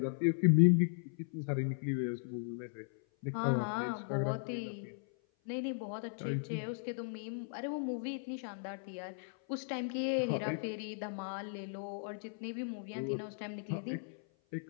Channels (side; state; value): right; silent; 53 dB below the other